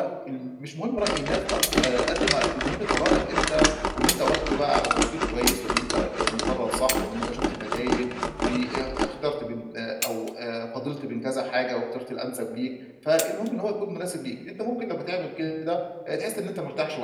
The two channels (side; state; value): both; identical; correlation 1.00